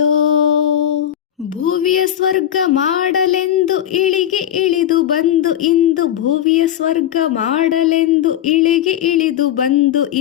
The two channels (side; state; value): right; quieter; 11.1 dB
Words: ಭುವಿಯ ಸ್ವರ್ಗ ಮಾಡಲೆಂದು ಇಳಿಗೆ ಇಳಿದು ಬಂದು ಇಂದು. ಭುವಿಯ ಸ್ವರ್ಗ ಮಾಡಲೆಂದು ಇಳಿಗೆ ಇಳಿದು ಬಂದು